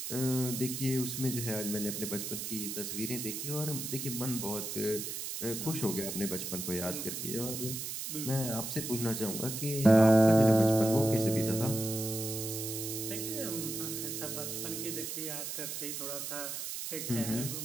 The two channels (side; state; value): right; noise; hiss, 5 dB below the sound